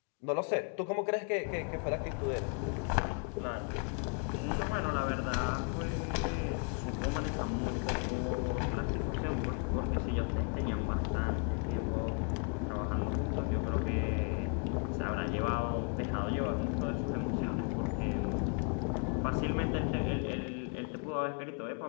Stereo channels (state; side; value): quieter; right; 37.9 dB